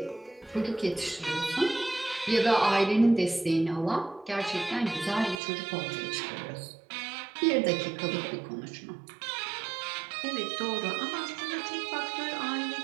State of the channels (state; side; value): drops out; left; at 5.4 s